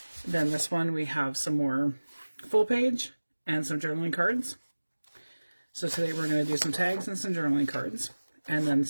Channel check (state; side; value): inverted; both; correlation -1.00